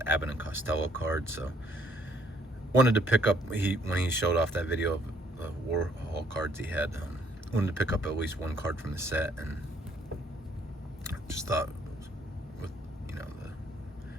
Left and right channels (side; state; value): both; normal; correlation 0.65